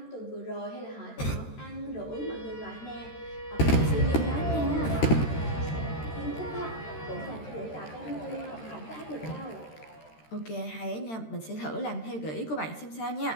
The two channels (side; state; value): right; late; 13 ms